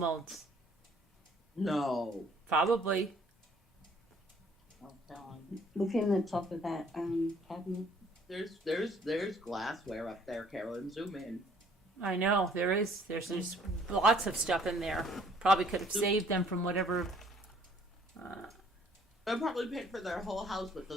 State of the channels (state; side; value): normal; both; correlation 0.60